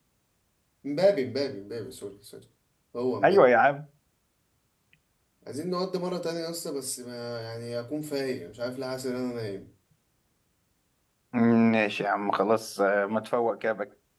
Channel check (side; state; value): both; identical; correlation 1.00